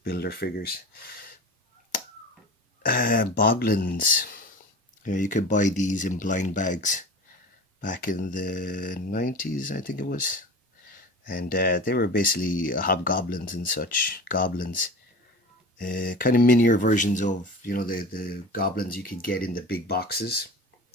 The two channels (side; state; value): both; normal; correlation 0.34